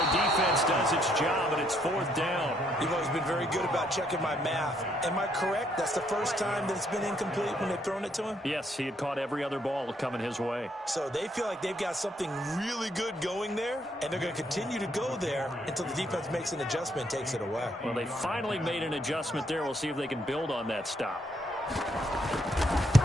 defense does its job, and it's 4th down. You've always been very good about checking my math. Am I correct? That's the first time that it's been incomplete when they've thrown it to him? Yes, he had caught every other ball coming his way. So they feel like they've got something really good going there, and they're going to continue to go there until the defense makes an adjustment and takes it away. Well, they finally made an adjustment there. We'll see if they can build on that stop.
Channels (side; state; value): both; normal; correlation 0.71